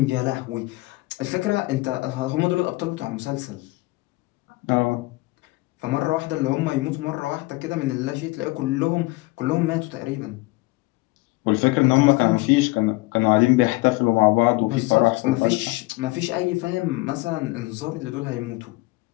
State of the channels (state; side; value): quieter; right; 22.2 dB